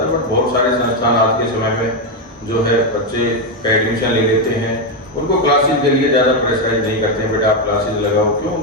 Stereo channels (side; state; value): both; normal; correlation 0.06